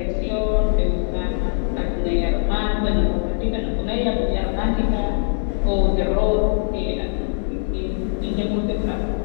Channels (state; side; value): silent; right; digital silence